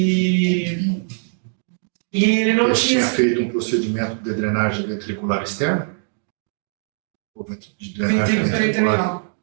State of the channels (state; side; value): silent; left; 65 dB below the other